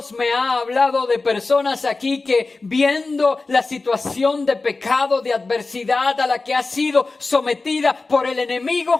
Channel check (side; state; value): right; quieter; 3.7 dB